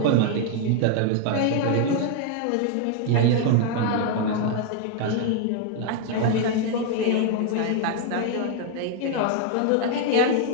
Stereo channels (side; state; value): both; different; correlation 0.00